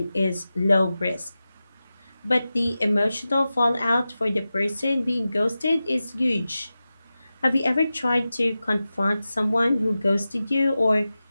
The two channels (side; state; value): both; inverted; correlation -0.94